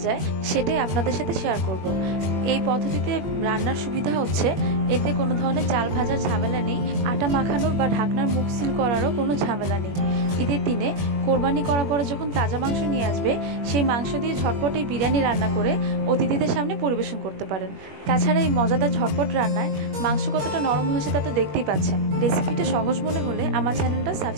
যায় সেটাই আপনাদের সাথে শেয়ার করব। এই পদ্ধতিতে রান্নার সুবিধা হচ্ছে এতে কোনো ধরনের চাল ভাজার ঝামেলা নেই, আটা মাখানোর বা ঢাকনার মুখ সিল করারও কোনো ঝামেলা নেই। ঈদের দিনে কোরবানি করার পরে যখন তাজা মাংস নিয়ে আসবে সেই মাংস দিয়ে ঝটপট এই বিরিয়ানি রান্না করে অতিথিদের সামনে পরিবেশন করতে পারেন। তাছাড়া এই মজাদার ঝটপট রান্নায় মাংস কতটা নরম হয়েছে তা তো দেখতেই পাচ্ছেন। রেসিপিটা সহজ মনে হলে আমার চ্যানেলটা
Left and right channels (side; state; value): left; late; 21 ms